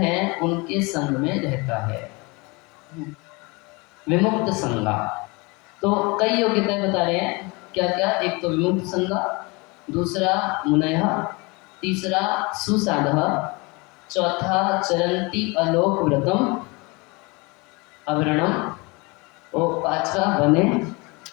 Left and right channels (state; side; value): quieter; right; 27.0 dB